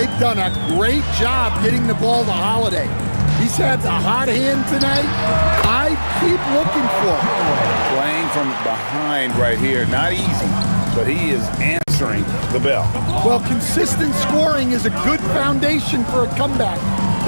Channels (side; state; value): both; inverted; correlation -1.00